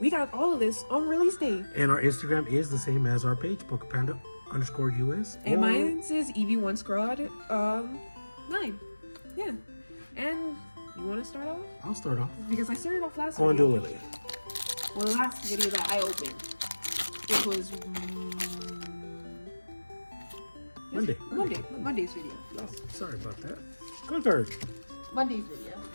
we got all of this on release day. And our Instagram is the same as our page, PokePanda_US. And or- mine says EV1 Squad 9. Yeah. And you wanna start off? I'll start off. Because I started off last Go and do video. Lily. Well, the last video that I opened. It was Monday's video. Oh, sorry about that. Go third. Monday's video,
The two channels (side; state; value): both; inverted; correlation -1.00